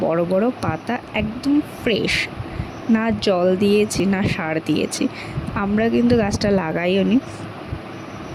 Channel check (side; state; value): both; identical; correlation 1.00